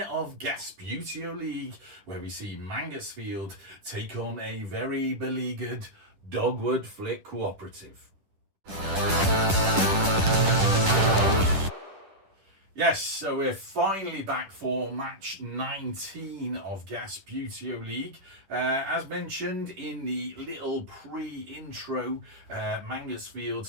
Gasbbuteo League, where we see Mangotsfield take on a very beleaguered Dogwood Flick Cooperative. Yes, so we're finally back for match 19 of Gasbbuteo League. As mentioned in the little pre-intro,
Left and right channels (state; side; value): late; left; 10 ms